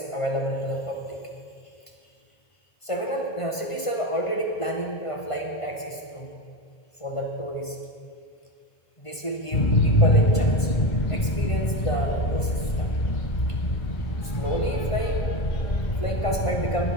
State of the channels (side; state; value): right; late; 1.5 ms